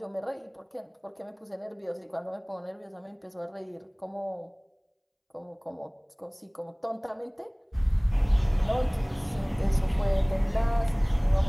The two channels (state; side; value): identical; both; correlation 1.00